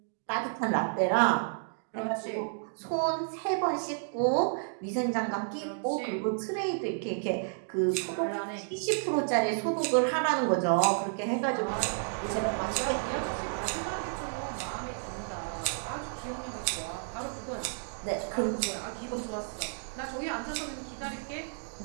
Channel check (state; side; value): silent; left; digital silence